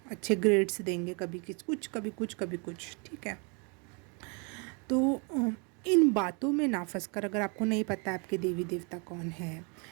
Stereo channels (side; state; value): left; quieter; 34.1 dB